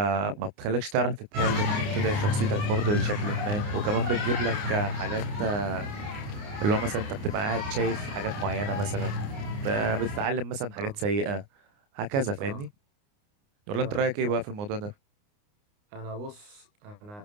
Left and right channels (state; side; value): late; left; 29 ms